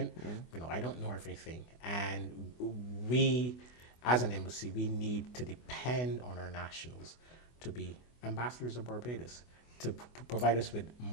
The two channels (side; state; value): right; late; 24 ms